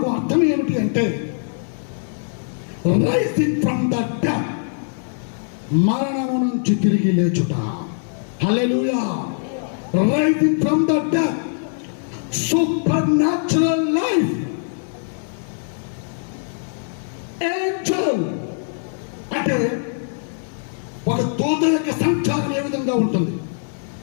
అర్థం ఏమిటి అంటే రైజింగ్ ఫ్రమ్ ద డెత్, మరణము నుంచి తిరిగి లేచుట. Hallelujah. Rising from the death, supernatural life. Angel అంటే ఒక దూత యొక్క సంచారం ఏ విధంగా ఉంటుంది,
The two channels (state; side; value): silent; right; digital silence